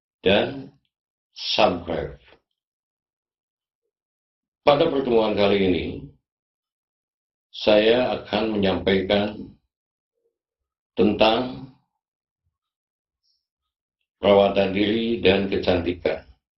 dan subscribe. Pada pertemuan kali ini, saya akan menyampaikan tentang perawatan diri dan kecantikan,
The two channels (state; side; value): identical; both; correlation 1.00